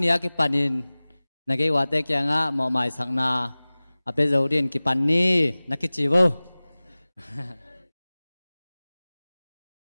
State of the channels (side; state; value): both; inverted; correlation -0.99